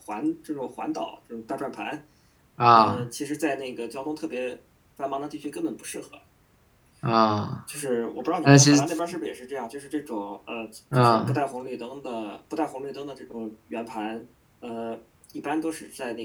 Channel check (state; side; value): identical; both; correlation 1.00